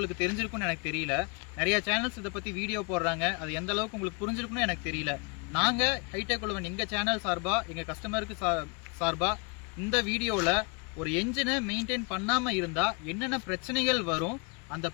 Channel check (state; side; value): quieter; right; 33.0 dB